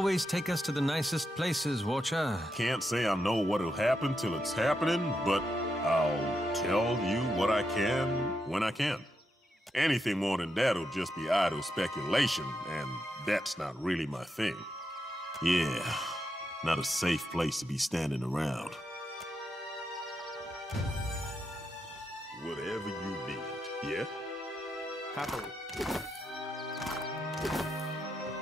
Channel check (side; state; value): both; normal; correlation 0.84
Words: take us to the nicest places, Watcher. Can't say I know what'll happen till it's happening, but I'll tell you what I can when I can. Anything more than that'll just be idle speculation, and that's not really my thing. Yeah, not a safe place to be standing around. Whatever you need, yeah? Happily.